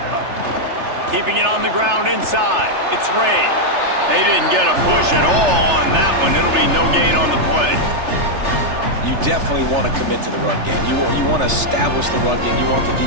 Keeping it on the ground inside. It's Ray. They didn't get a push at all on that one. It'll be no gain on the play. You definitely want to commit to the run game. You want to establish the run game. You want the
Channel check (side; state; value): left; late; 3.3 ms